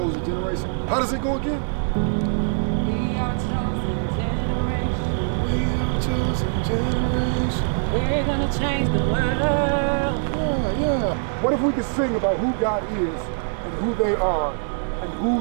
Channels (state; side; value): silent; left; digital silence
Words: generation. How does it go again? We are chosen generation. We are a chosen generation. We're gonna change the world. Yeah. What if we could sing about who God is and who they are and